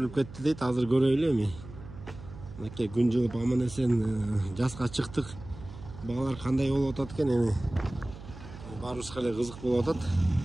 кетти дейт, азыр көрөйлү эми. Мынакей күн жылып аман эсен жазга чыктык. Багалар кандай болуп атат экен эми. Баарыбызга эле кызык болуп атат.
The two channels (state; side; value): noise; right; hum, 15 dB below the sound